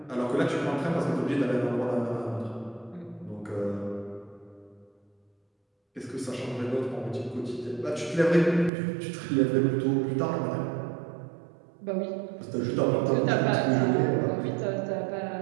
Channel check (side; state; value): left; drops out; at 8.7 s